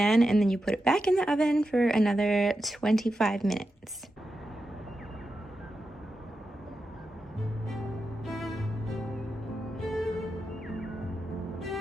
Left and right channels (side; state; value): both; normal; correlation 0.89